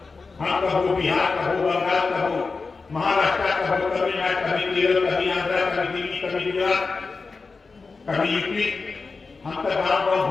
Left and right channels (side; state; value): right; quieter; 4.3 dB